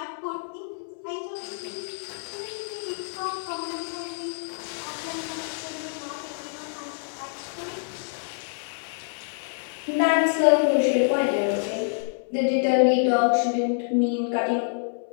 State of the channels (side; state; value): right; silent; 60 dB below the other